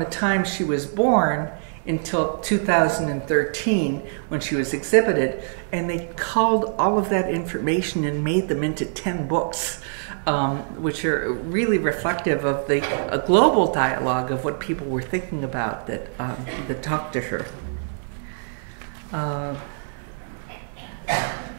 time she was born until 2013 when she was exhibited. And they culled all of that information and made them into 10 books, which are really reflective of a global dialogue of what people were thinking about that talked to her.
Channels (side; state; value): left; silent; 61 dB below the other